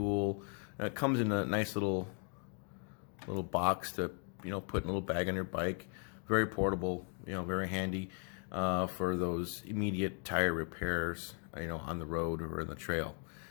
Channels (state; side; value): quieter; right; 39.9 dB